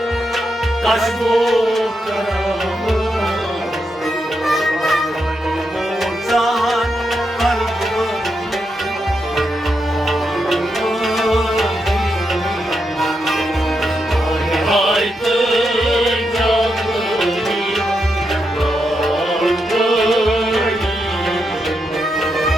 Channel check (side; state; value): both; normal; correlation 0.84